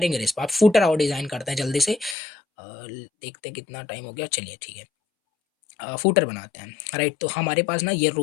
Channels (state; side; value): drops out; right; at 2.1 s